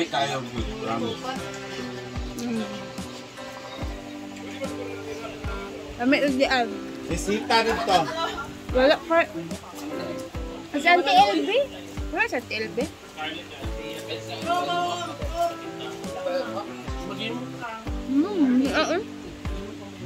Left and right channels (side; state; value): both; identical; correlation 1.00